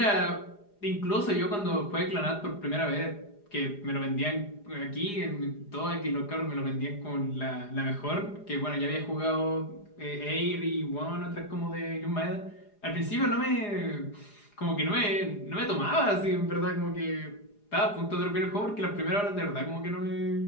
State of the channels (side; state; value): right; late; 4.9 ms